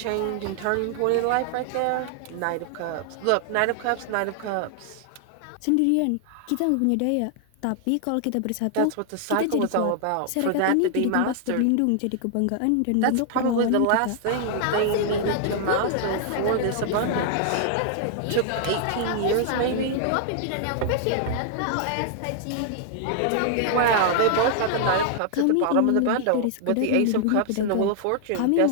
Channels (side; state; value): both; different; correlation 0.00